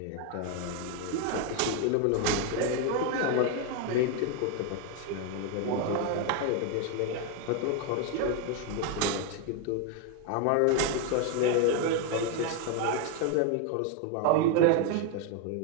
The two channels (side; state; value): both; different; correlation 0.01